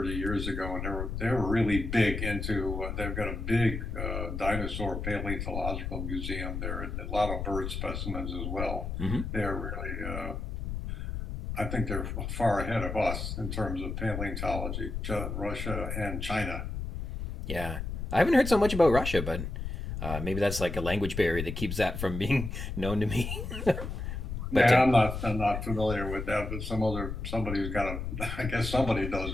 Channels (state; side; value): noise; left; rumble, 4 dB below the sound